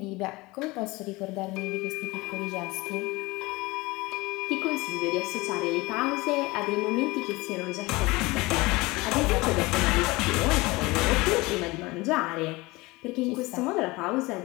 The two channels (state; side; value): quieter; right; 22.4 dB